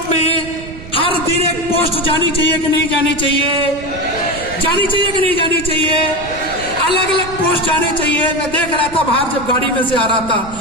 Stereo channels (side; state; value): right; noise; rumble, 14 dB below the sound